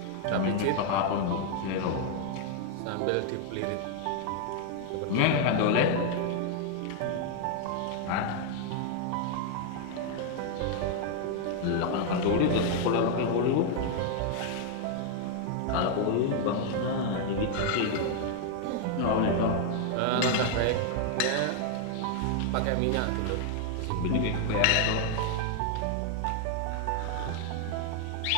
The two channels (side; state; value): both; different; correlation 0.00